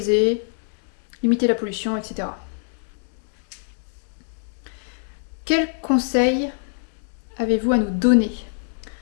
limiter la pollution, etc. Quels conseils avez-vous à nous donner?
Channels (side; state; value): right; silent; digital silence